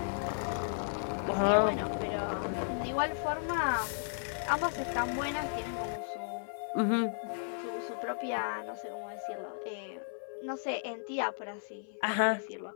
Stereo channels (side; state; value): right; silent; 55 dB below the other